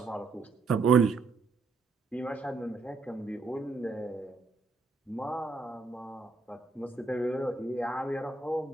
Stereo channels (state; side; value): quieter; left; 3.9 dB